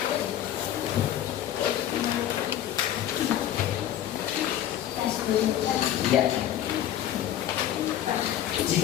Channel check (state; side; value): quieter; right; 11.5 dB